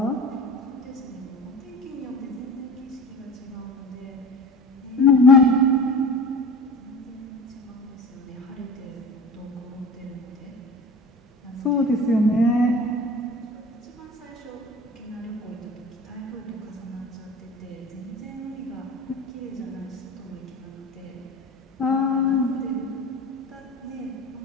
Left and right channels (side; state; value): both; normal; correlation 0.35